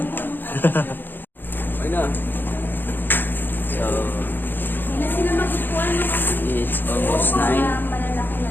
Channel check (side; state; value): right; late; 0.094 ms